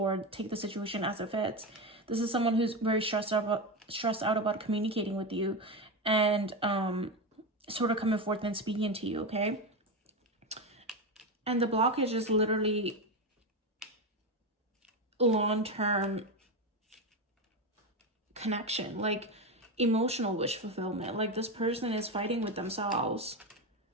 take the situation as it fits. This is someone who's very stressed out about communicating with you and sort of coming forth and speaking to you, okay? And the blockage is literally long-term connection, like emotional wish fulfillment. Like, this person is fighting with themselves,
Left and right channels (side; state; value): both; normal; correlation 0.15